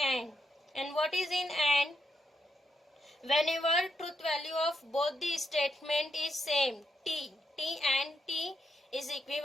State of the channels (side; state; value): both; normal; correlation 0.80